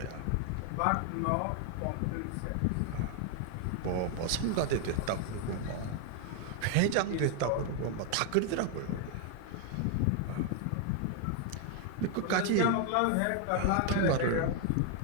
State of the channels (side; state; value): both; different; correlation 0.00